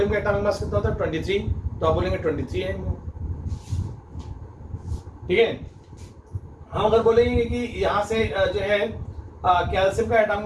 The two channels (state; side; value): identical; both; correlation 1.00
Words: का एटॉमिक मास कितना होता है, 23, तो आप बोलेंगे 23 AMU, ठीक है। हम अगर बोलेंगे कि यहाँ से जो है कैल्शियम का